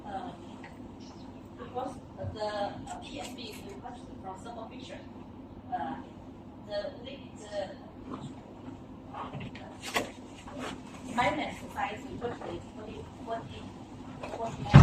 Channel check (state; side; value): identical; both; correlation 1.00